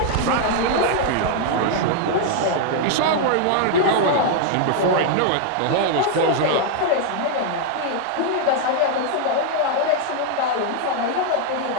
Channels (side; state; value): both; different; correlation 0.00